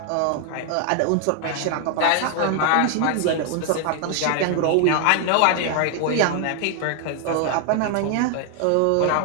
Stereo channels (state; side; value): different; both; correlation 0.00